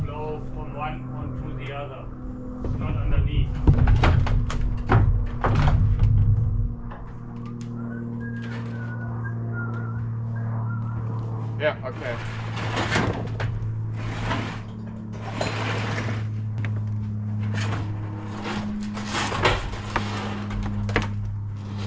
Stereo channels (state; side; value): identical; both; correlation 1.00